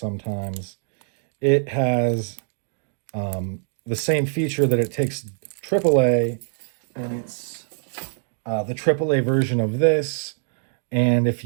It has the same feature that it takes AAA, and it's the AAA version of this. And if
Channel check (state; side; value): silent; left; digital silence